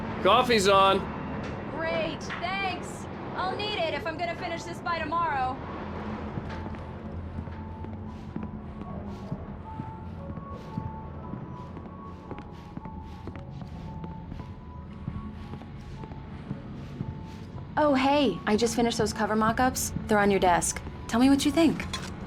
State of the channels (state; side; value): identical; both; correlation 1.00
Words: Coffee's on. Great, thanks. I'll need it if I'm gonna finish this by tomorrow. Oh, hey, I just finished those cover mock-ups. They're on your desk. Tell me what you think.